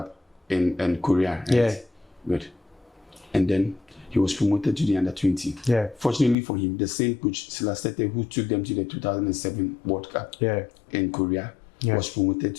in Korea. Right? Good. And then he was promoted to the under 20. Fortunately for him, the same coach Silastete who took them to the 2007 World Cup in Korea was promoted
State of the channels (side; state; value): right; drops out; at 6.4 s